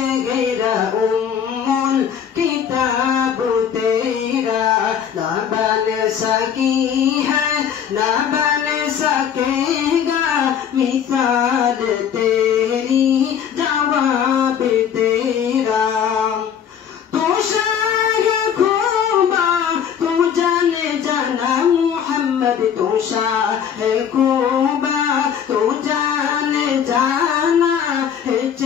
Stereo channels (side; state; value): right; quieter; 8.3 dB